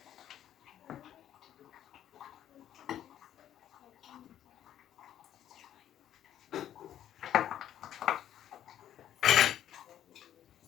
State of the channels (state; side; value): quieter; right; 11.0 dB